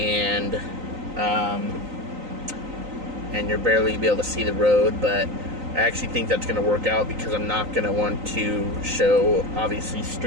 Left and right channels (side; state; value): left; late; 3.9 ms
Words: you're barely be able to see the road, but I actually think that's going to work out because I'm not going to want to show, obviously,